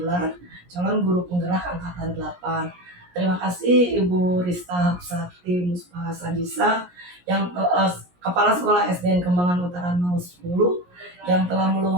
calon guru penggerak angkatan 8. Terima kasih Ibu Rista Hapsati Muspaha Sadisa yang Kepala Sekolah SDN Kembangan Utara 010 yang telah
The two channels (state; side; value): late; left; 17 ms